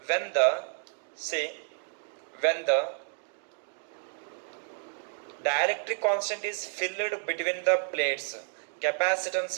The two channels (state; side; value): silent; left; 57 dB below the other